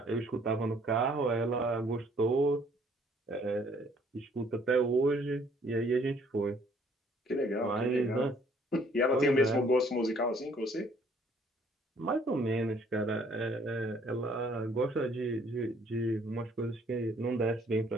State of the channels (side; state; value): both; normal; correlation 0.62